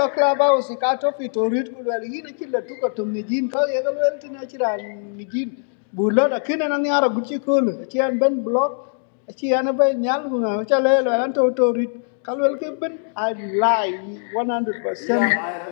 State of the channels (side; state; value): right; silent; digital silence